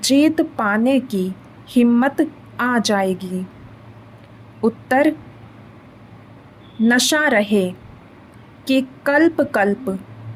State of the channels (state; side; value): identical; both; correlation 1.00